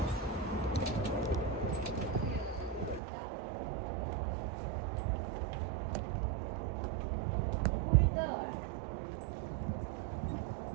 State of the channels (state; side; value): drops out; left; at 3.0 s